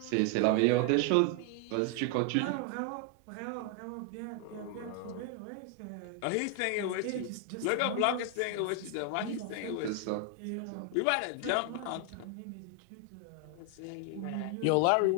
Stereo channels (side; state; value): both; different; correlation 0.00